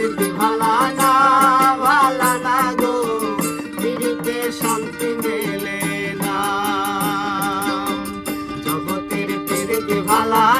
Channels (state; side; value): identical; both; correlation 1.00